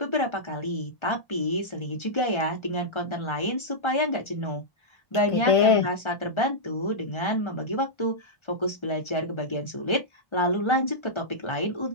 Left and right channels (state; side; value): late; right; 1.4 ms